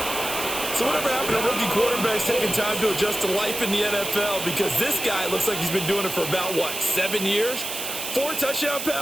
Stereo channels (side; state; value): right; noise; hiss, 5 dB below the sound